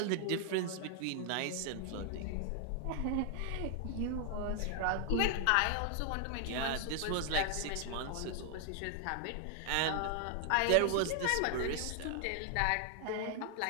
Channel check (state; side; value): different; both; correlation 0.00